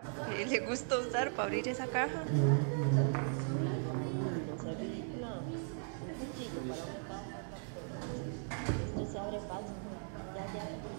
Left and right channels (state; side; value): silent; left; 52 dB below the other